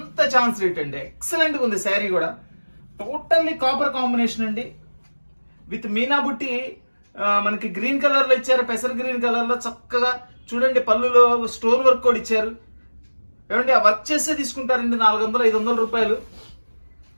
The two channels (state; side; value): inverted; both; correlation -1.00